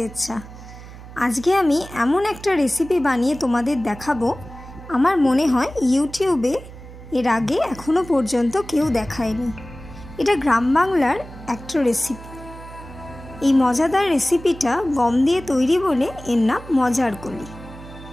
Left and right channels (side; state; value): right; noise; hum, 16 dB below the sound